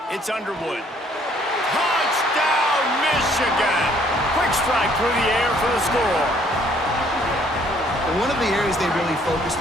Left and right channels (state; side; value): normal; both; correlation 0.62